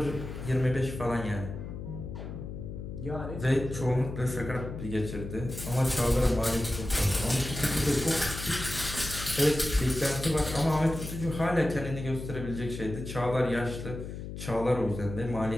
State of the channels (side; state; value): left; noise; hum, 8 dB below the sound